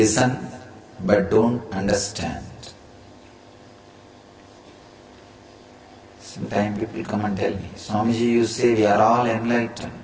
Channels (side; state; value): both; identical; correlation 1.00